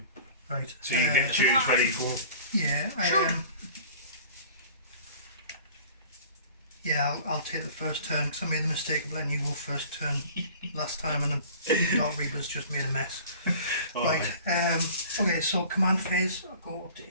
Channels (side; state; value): both; inverted; correlation -0.46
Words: Right. So you get to choose where you go. Yeah, yeah, I'll take the first turn because I made the mistake of letting you go first turn last time, and the Dark Reapers just made a mess. Oh, right. Okay. So command phase, I'll go up to